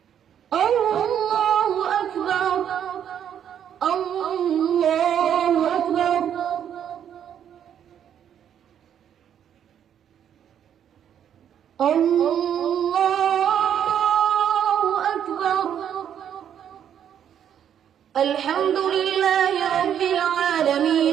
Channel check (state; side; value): quieter; left; 9.3 dB